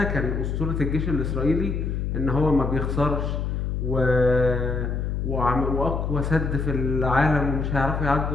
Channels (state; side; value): noise; left; hum, 1 dB below the sound